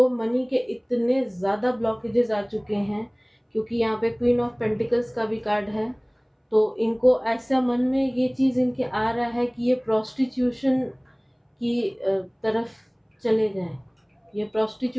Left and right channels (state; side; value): identical; both; correlation 1.00